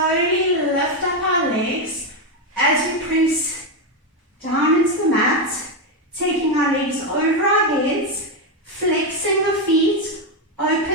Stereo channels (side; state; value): both; normal; correlation 0.07